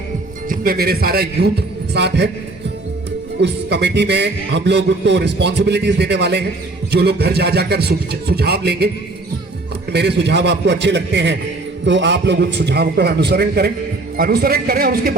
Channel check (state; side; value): quieter; left; 3.1 dB